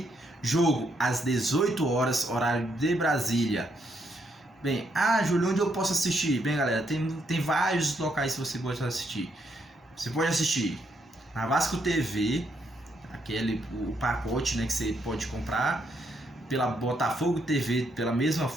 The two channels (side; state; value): both; normal; correlation 0.75